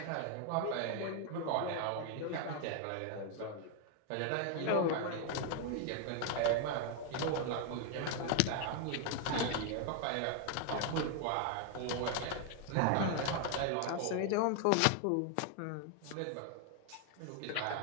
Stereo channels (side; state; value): both; different; correlation 0.00